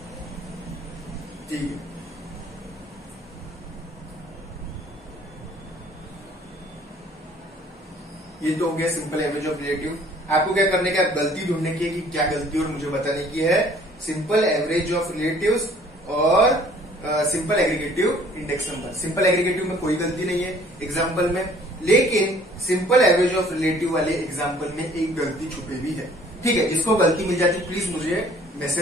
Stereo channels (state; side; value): normal; both; correlation 0.55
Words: ठीक है, ये तो हो गया सिंपल एवरेज ऑफ रिलेटिव। आपको क्या करने का, गलती ढूंढने की है कि क्या गलती और मुझे बताने की है। सिंपल एवरेज ऑफ रिलेटिव्स और simple aggregative index number. Simple aggregative में कोई गलती नहीं है एग्जाम्पल में, लेकिन सिंपल एवरेज ऑफ रिलेटिव वाले एग्जाम्पल में एक गलती छुपी हुई है। ठीक है, जिसको गलती मिल जाती प्लीज मुझे